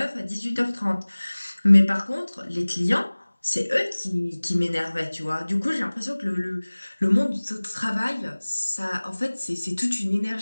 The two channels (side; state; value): both; inverted; correlation -1.00